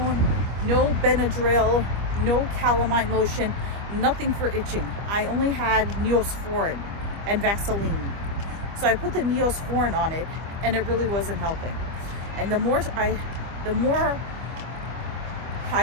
no Benadryl, no calamine lotion, nothing for itching. I only had Neosporin and Vaseline. So I put the Neosporin on it and it really wasn't helping. And the more I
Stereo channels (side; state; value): left; late; 25 ms